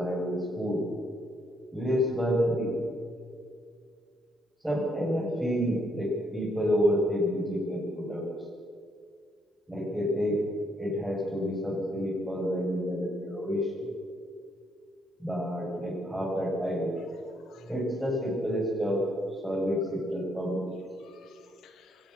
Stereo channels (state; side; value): normal; both; correlation 0.72